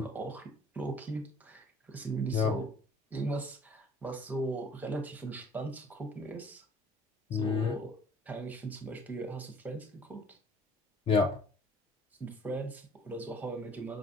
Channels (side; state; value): both; normal; correlation 0.54